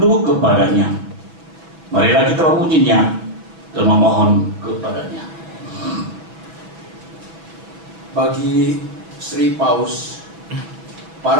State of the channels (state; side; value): late; left; 6.0 ms